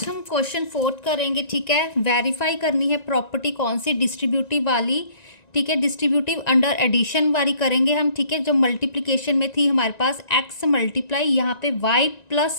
हम क्वेश्चन 4 करेंगे। ठीक है, वेरीफाई करनी है प्रॉपर्टी कौन सी, डिस्ट्रीब्यूटिव वाली। ठीक है, डिस्ट्रीब्यूटिव अंडर एडिशन वाली करेंगे हम। ठीक है, जो मल्टीप्लिकेशन में थी हमारे पास x मल्टीप्लाई यहाँ पे y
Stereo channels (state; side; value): late; right; 1.9 ms